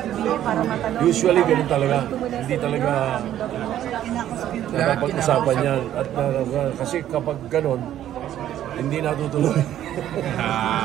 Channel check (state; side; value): quieter; left; 11.8 dB